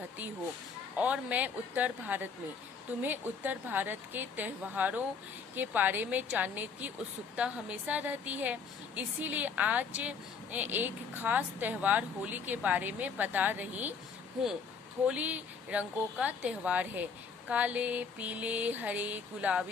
हो और मैं उत्तर भारत में। तुम्हें उत्तर भारत के त्योहारों के बारे में जानने की उत्सुकता हमेशा रहती है, इसीलिए आज एक खास त्योहार होली के बारे में बता रही हूँ। होली रंगों का त्योहार है। काले, पीले, हरे,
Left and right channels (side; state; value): right; quieter; 5.7 dB